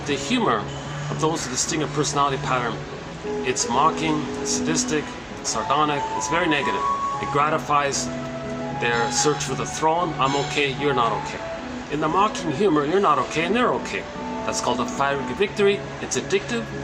those with the stinger personality pattern, it's mocking, it's sadistic, it's sardonic, it's very negative. It gratifies their search for the throne. I'm okay, you're not okay. In the mocking humor, you're not okay and they're okay. That's called a fiery victory. It's addictive.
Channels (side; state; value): both; identical; correlation 1.00